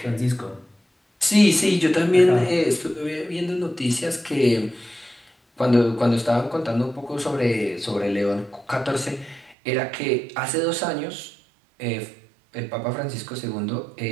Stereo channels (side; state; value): left; drops out; at 9.6 s